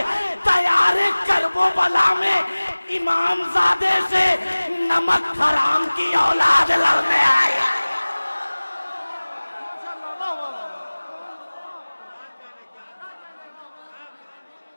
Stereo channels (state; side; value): inverted; both; correlation -1.00